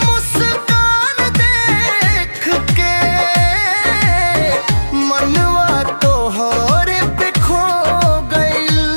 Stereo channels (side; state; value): both; inverted; correlation -1.00